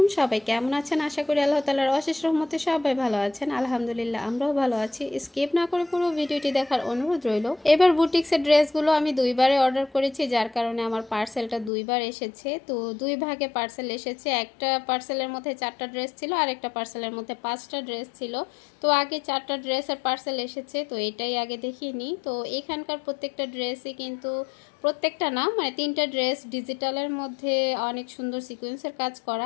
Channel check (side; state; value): right; drops out; at 11.7 s